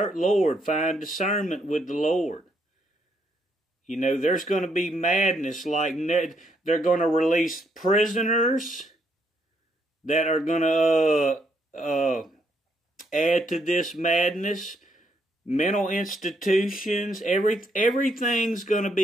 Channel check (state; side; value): normal; both; correlation 0.74